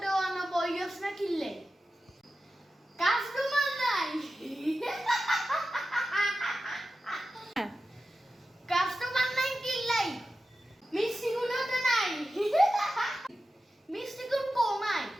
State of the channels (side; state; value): both; normal; correlation 0.93